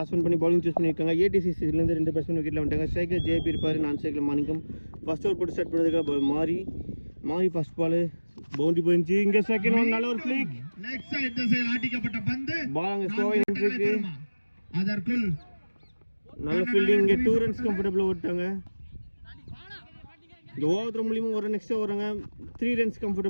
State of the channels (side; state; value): both; inverted; correlation -1.00